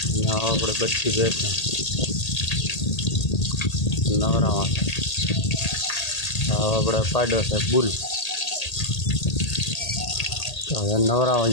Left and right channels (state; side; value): late; right; 1.8 ms